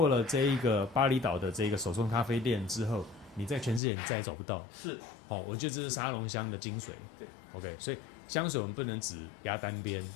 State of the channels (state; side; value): drops out; right; at 3.8 s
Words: 了这一个巴厘岛的这个手冲咖啡店之后。你在全世界你再也找不到，是，我觉得这是沙龙香的精髓。对 ，OK， 所以香水我们不能只压单边，